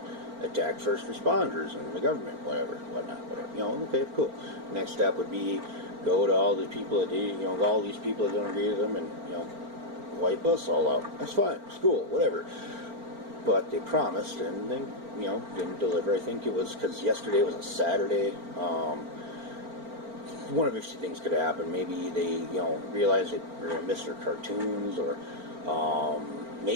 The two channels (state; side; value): late; left; 4.4 ms